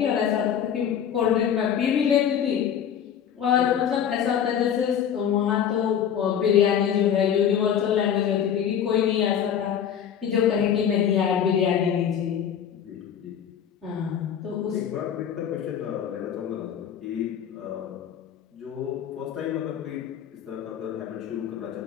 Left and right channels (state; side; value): quieter; right; 8.8 dB